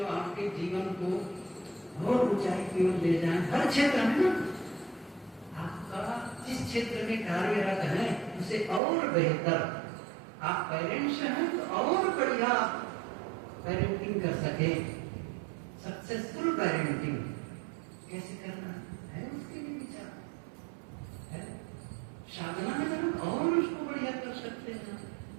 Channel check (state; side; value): drops out; left; at 8.8 s